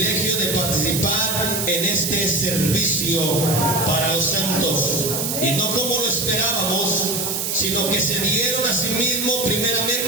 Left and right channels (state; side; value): noise; right; hiss, 1 dB below the sound